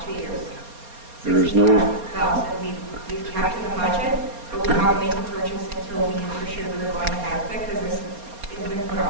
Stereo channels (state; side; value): late; left; 4.3 ms